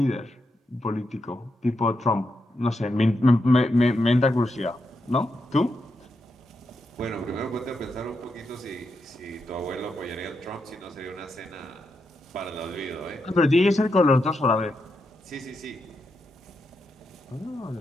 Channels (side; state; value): both; normal; correlation 0.84